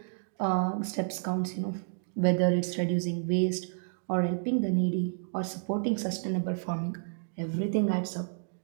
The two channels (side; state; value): left; silent; digital silence